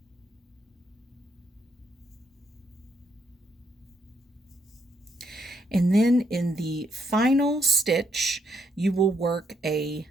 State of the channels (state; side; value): normal; both; correlation 0.75